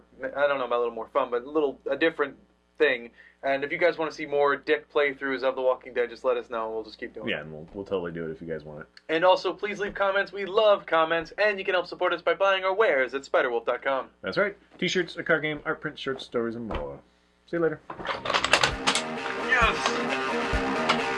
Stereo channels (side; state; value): both; identical; correlation 1.00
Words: I don't know about a little more fun, but a different thing. And if you guys want to see more Dick playthroughs of The Walking Dead, just let us know, and we'll just keep doing it. Yeah, and we'll totally do it if you guys want it. And also, please leave comments. We love comments, and you can help support us by buying our wares at spiderwolf.com. That's right. T-shirts, a card game, art print, shirts, stories, and more. See you later. Yes!